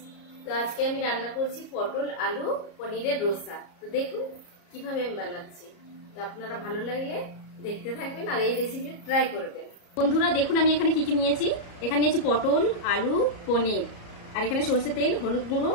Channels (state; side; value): late; right; 34 ms